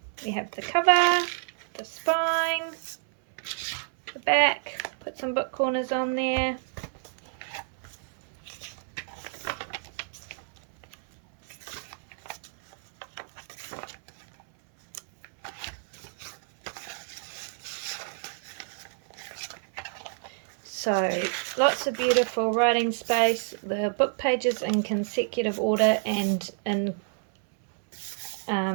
We have the cover, the spine, the back, put some book corners on there. So lots of beautiful writing space, the book pages in consecutive order and in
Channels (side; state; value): left; silent; 59 dB below the other